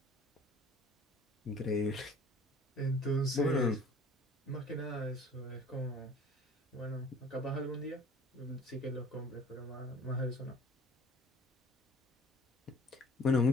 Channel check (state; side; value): normal; both; correlation 0.49